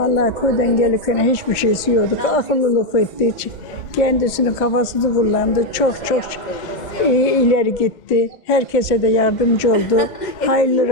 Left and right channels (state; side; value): late; right; 2.1 ms